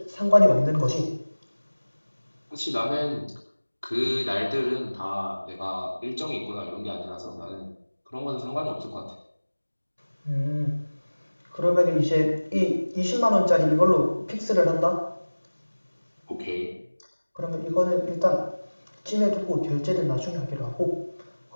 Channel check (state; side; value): inverted; both; correlation -1.00